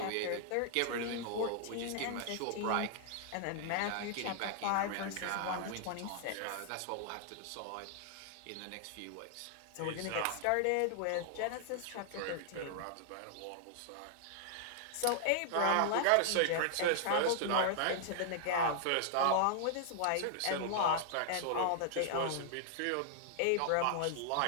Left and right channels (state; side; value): different; both; correlation 0.00